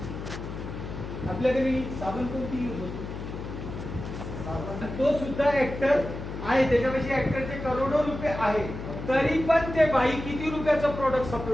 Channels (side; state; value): left; noise; hum, 8 dB below the sound